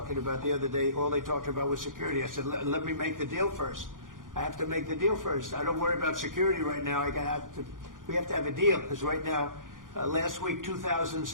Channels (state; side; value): late; left; 0.89 ms